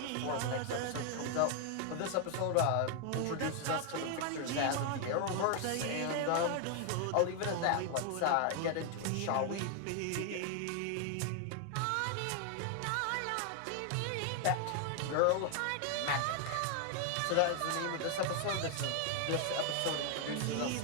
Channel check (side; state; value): both; different; correlation 0.00